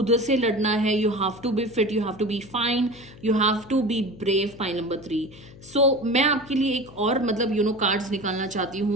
से लड़ना है। You have to be fit, you have to be fine, you have to be brave. Point number 3 so मैं आपके लिए एक और मतलब कार्ड्स निकालना चाहती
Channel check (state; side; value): noise; left; hum, 20 dB below the sound